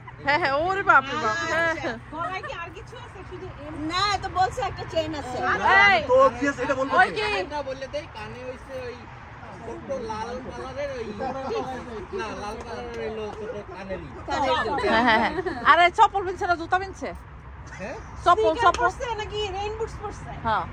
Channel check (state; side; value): identical; both; correlation 1.00